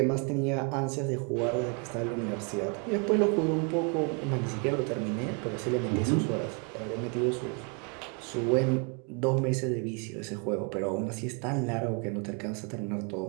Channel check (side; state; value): left; quieter; 34.7 dB